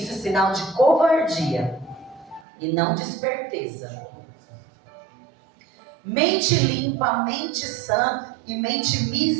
é sinal de covardia e não de esperteza. Mente limpa, mente sã e mente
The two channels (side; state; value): left; drops out; at 2.5 s